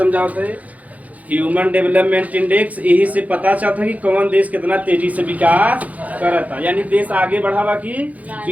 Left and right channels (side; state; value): left; late; 0.074 ms